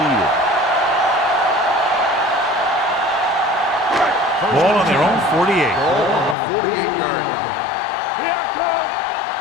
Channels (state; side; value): drops out; right; at 6.4 s